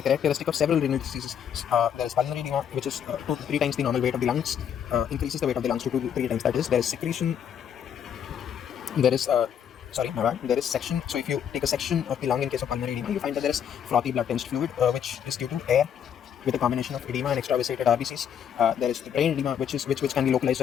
characteristic of several renal diseases. There is pulmonary edema, which is 2 to 3 times the normal weight of the lungs, increases the weight of the lungs to 2 to 3 times. That is, there is secretion, there is there is section. So if you take a section of the lung in case of pulmonary edema, you find that there is frothy blood tinged fluid, which is due to air with a combination of edema and extravasated RBCs. There is the brain edema, which can be localized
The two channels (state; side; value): quieter; right; 8.7 dB